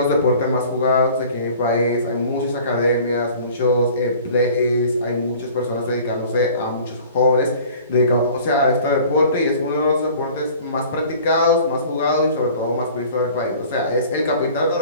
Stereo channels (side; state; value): both; inverted; correlation -0.47